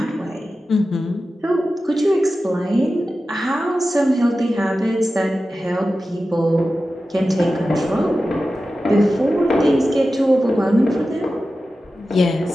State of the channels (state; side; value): normal; both; correlation 0.93